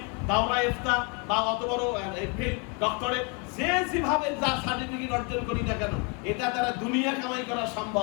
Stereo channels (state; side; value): quieter; right; 33.6 dB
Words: দাওরা ইফতা বা অত বড় ডক্টরেট, যে যেভাবে যা সার্টিফিকেট অর্জন করি না কেন, এটা দ্বারা দুনিয়া কামাই করা